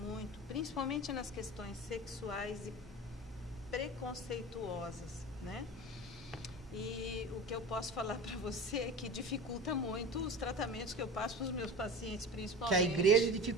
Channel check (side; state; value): both; normal; correlation 0.32